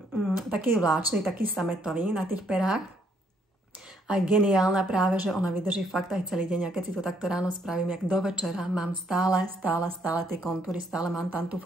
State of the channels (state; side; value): normal; both; correlation 0.69